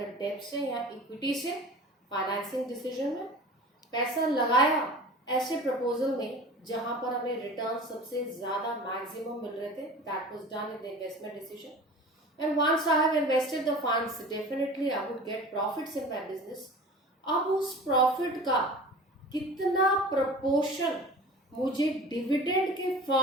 date से या इक्विटी से फाइनेंसिंग डिसीजन में, पैसा लगाया ऐसे प्रपोजल में जहां पर हमें रिटर्न सबसे ज्यादा मैक्सिमम मिल रहे थे, that was done in the investment decision. And once I have invested the funds, definitely I would get profits in my business. अब उस प्रॉफिट का कितना प्रपोर्शन मुझे डिविडेंड के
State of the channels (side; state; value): both; normal; correlation 0.39